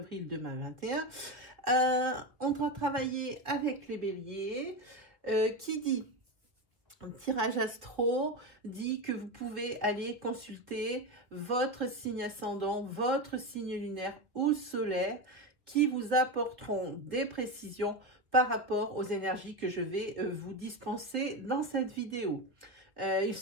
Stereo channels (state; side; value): late; left; 1.6 ms